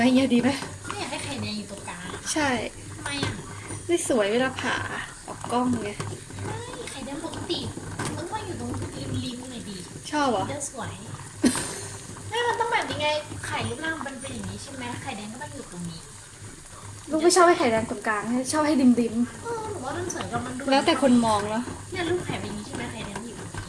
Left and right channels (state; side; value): identical; both; correlation 1.00